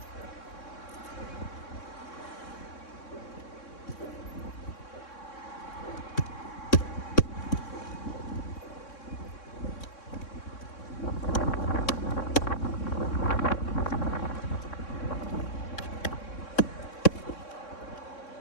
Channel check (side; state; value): right; late; 3.6 ms